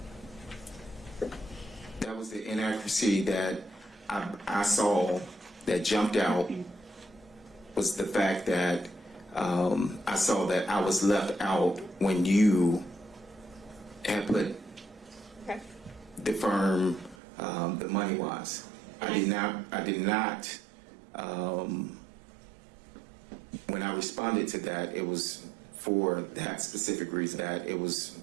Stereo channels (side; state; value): left; drops out; at 17.2 s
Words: That was the inaccuracy that I saw that jumped out, was the fact that I saw that I was left out when you had put Okay. the firm, the money wise. I did not, when I responded to that, it was for that specific reason,